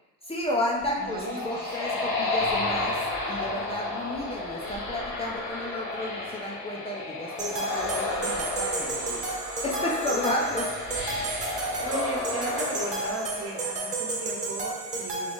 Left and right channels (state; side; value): normal; both; correlation 0.10